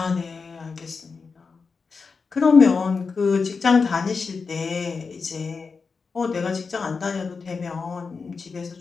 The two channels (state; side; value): quieter; right; 4.9 dB